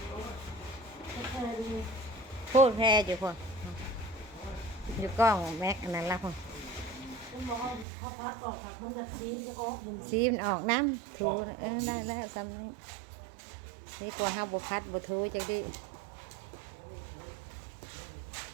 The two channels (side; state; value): left; drops out; at 7.9 s